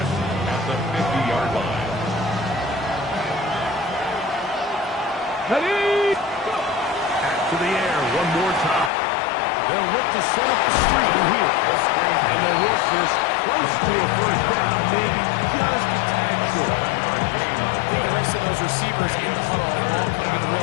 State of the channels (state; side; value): drops out; right; at 8.9 s